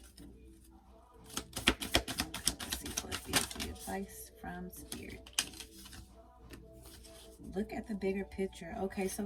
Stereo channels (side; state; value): both; identical; correlation 1.00